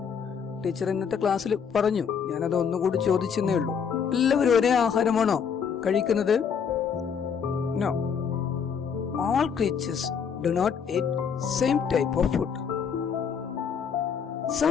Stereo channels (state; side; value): quieter; right; 6.9 dB